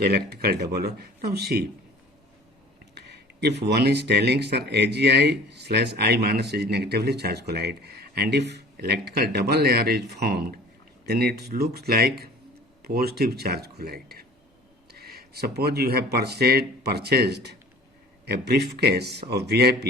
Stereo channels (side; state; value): both; normal; correlation 0.46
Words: electrical double layer. Now see, if one is telling, sir, AgI/I minus is negatively charged colloid, and if electrical double layer is formed, then it looks like positive charge colloid. Suppose you have purchased a briefcase of